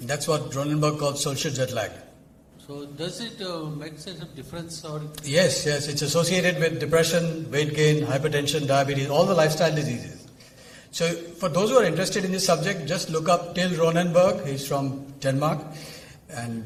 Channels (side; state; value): both; identical; correlation 1.00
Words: That's what Ronenberg calls social jet lag. So does it make sense of difference or? Yes, it's associated with depression, weight gain, hypertension, diabetes, all the lifestyle diseases. So for those who are interested in this subject, just look up Till Ronenberg. He's from Denmark. And